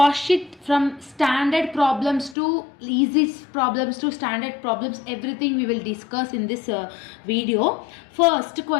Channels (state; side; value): drops out; right; at 2.4 s